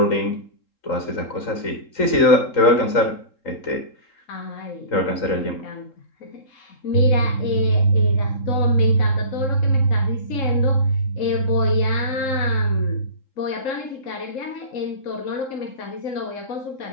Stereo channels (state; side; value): late; right; 3.8 ms